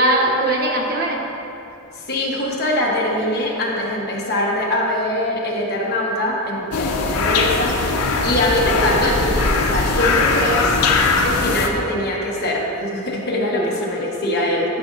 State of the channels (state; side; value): normal; both; correlation 0.12